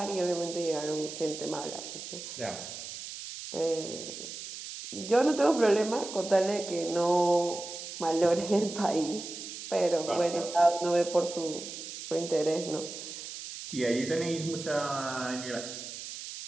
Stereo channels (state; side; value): noise; right; hiss, 10 dB below the sound